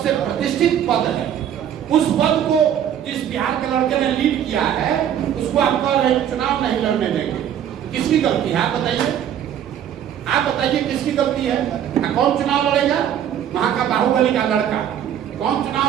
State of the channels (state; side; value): quieter; left; 9.8 dB